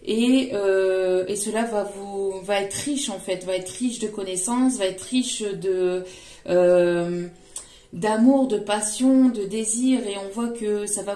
Et cela va être riche en fait, va être riche de connaissances, va être riche d'amour, de passion, de désir, et on voit que ça va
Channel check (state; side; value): identical; both; correlation 1.00